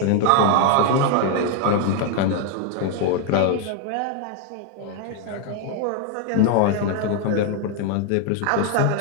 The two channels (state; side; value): different; both; correlation 0.01